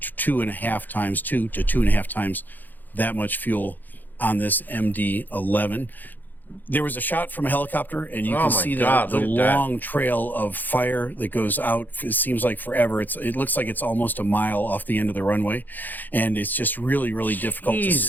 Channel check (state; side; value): late; right; 0.086 ms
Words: to 2.5 times that much fuel on this MD-11. There was a shot from a helicopter, and you can see the long trail of fire that goes out. It seems like forever. It looks like it's almost a mile off the end of the runway, and it's just really, really difficult to